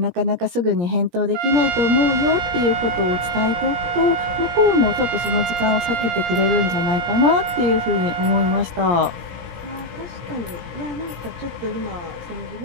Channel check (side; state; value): left; late; 17 ms